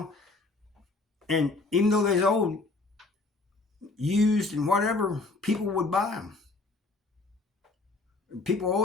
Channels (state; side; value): quieter; right; 3.4 dB